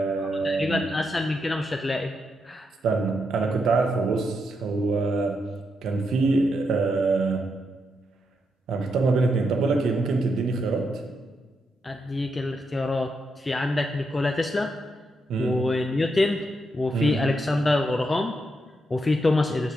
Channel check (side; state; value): both; normal; correlation 0.82